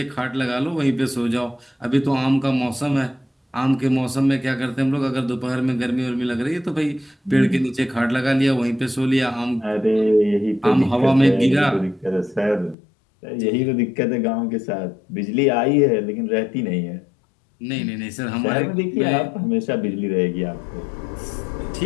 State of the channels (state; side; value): drops out; right; at 12.8 s